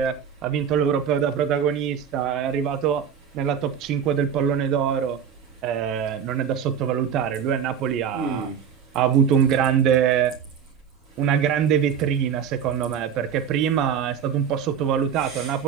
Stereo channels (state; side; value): quieter; left; 8.0 dB